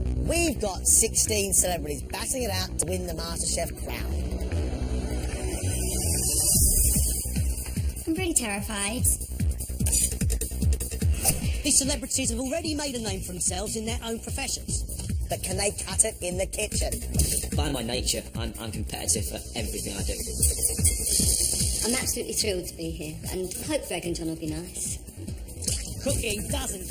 We've got 16 celebrities battling it out to win the MasterChef crown. I'm pretty terrified. These celebrities have already made a name for themselves in their own professions. But can they cut it in the kitchen? By my nature, I'm competitive for everything I do. I'm absolutely thrilled to be here, and hope Greg and John will be nice. Cooking doesn't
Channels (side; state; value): both; identical; correlation 1.00